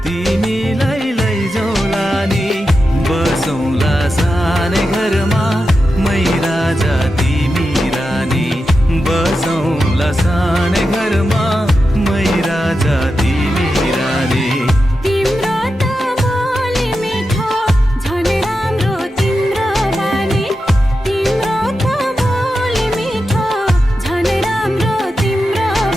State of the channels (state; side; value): normal; both; correlation 0.90